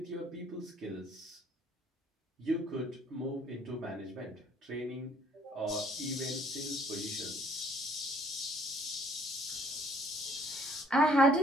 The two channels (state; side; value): normal; both; correlation 0.61